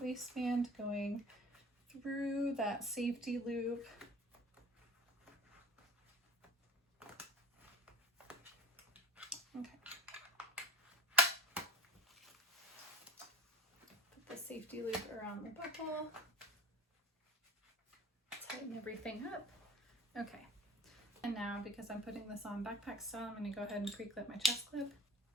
waistband going through that safety loop. Okay. Put the safety loop around the buckle. Tighten everything up. Okay. And now, because I'm putting this on backpack style, I'm going to go ahead and pre-clip my chest clip.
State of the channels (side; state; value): both; normal; correlation 0.43